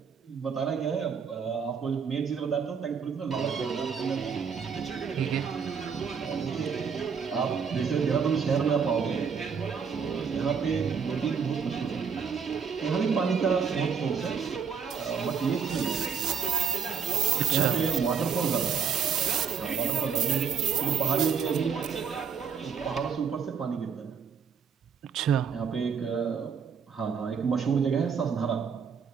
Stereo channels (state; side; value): quieter; left; 6.6 dB